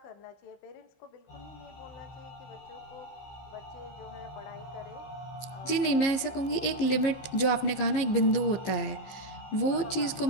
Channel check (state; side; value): late; right; 15 ms